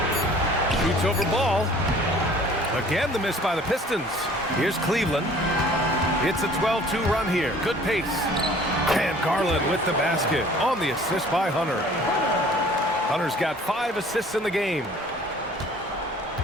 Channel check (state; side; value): normal; both; correlation 0.51